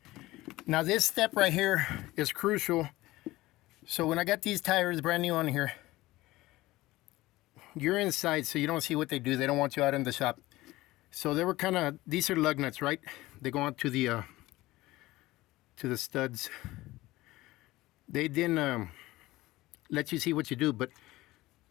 Now this step right here is crucial. So when I got these tires brand new on here, you're inside so you don't see what they do. They don't want you out in the shop. So they were kind of, these are lug nuts, right? They go on to the studs. They didn't let you see what you do, but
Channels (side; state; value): right; quieter; 18.3 dB